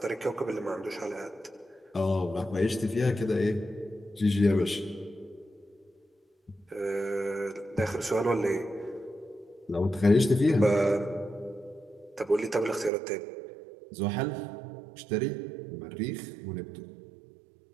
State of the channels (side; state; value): left; drops out; at 12.9 s